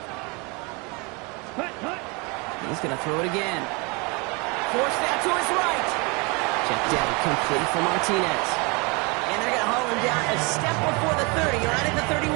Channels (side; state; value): left; quieter; 29.2 dB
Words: Hut. Hut. He's going to throw it again. Force that to his right. Check down, complete for Martinez. And they're going to haul him down a step before the 30, right at the 31.